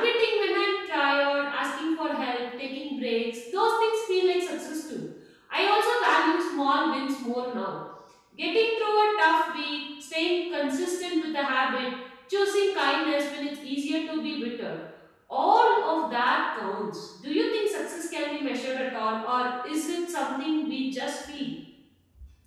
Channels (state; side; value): identical; both; correlation 1.00